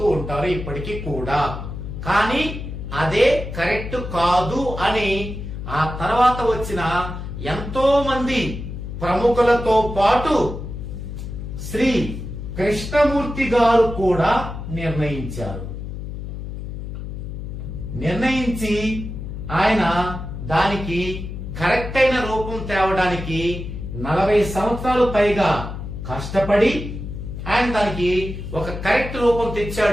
ఉంటారు ఇప్పటికీ కూడా. కానీ అదే కరెక్ట్ కాదు అని ఆ తర్వాత వచ్చిన ఎంతో మంది ప్రముఖులతో పాటు శ్రీ కృష్ణమూర్తి గారు కూడా నిర్ణయించి ఆయన దానికి కరెక్ట్ అయిన రూపం తేవడానికి 40 సంవత్సరాలు పైగా కష్టపడి ఆయన దానికి ఒక కరెక్ట్ రూపం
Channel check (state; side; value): noise; left; hum, 7 dB below the sound